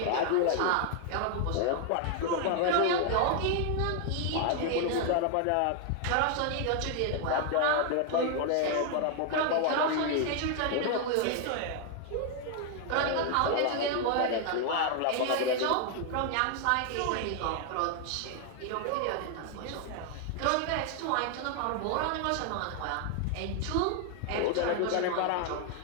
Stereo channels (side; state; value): both; different; correlation 0.00